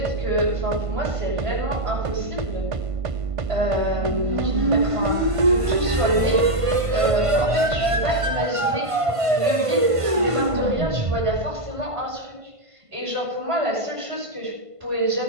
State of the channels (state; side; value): late; left; 1.5 ms